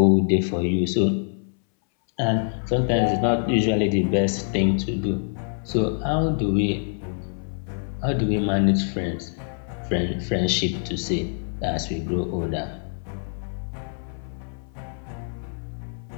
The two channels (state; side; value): silent; right; 62 dB below the other